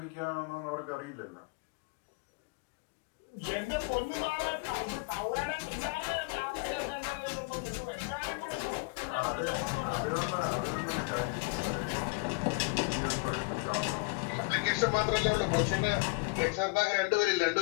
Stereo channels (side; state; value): right; quieter; 29.6 dB